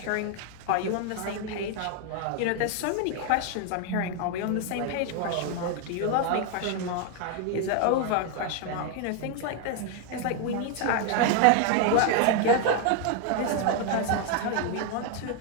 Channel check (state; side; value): different; both; correlation 0.01